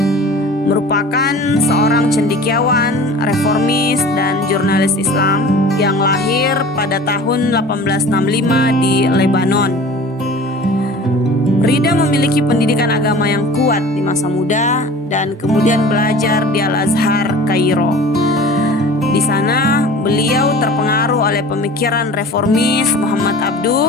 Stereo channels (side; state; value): both; normal; correlation 0.42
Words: merupakan seorang cendekiawan, reformis, dan jurnalis Islam yang lahir pada tahun 1865 di Lebanon. Ridha memiliki pendidikan agama yang kuat di masa muda dan kemudian belajar di Al-Azhar, Kairo. Di sana beliau terpengaruh oleh pemikiran reformis Muhammad